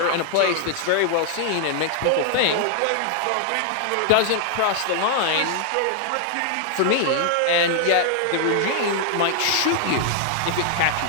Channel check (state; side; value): different; both; correlation 0.00